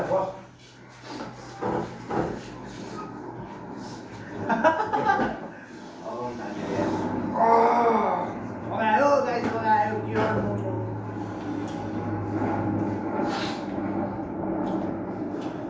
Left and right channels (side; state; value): both; identical; correlation 1.00